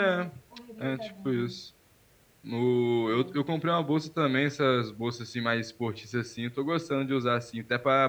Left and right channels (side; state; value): both; identical; correlation 1.00